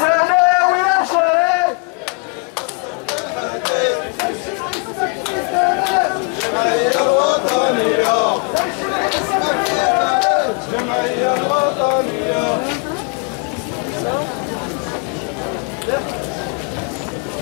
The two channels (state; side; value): quieter; right; 33.9 dB